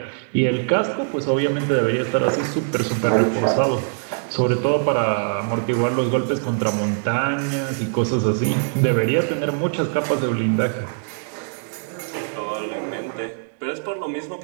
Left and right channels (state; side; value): silent; left; digital silence